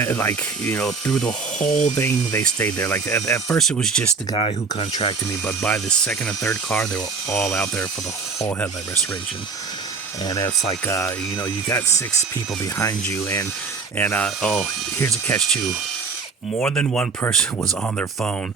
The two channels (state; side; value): quieter; left; 4.9 dB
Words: like, you know, through the whole thing they stayed there. Like at first it was just the guy who contracted me, but by the second and third car they were all out there for the whole headlight restoration. And it's like, you know, you got 6 people behind you, and oh, here's a catch too. More than one person was on their phone